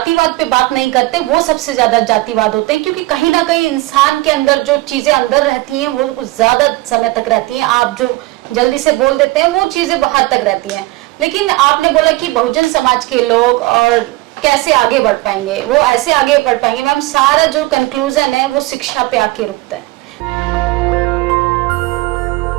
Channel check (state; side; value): quieter; left; 20.5 dB